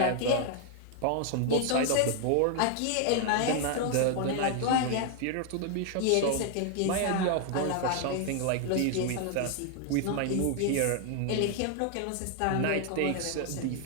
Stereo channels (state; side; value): different; both; correlation 0.00